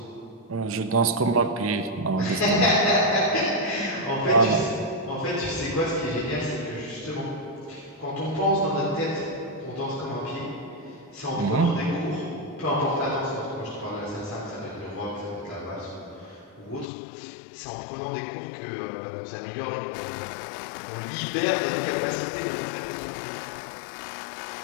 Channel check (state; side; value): drops out; right; at 16.9 s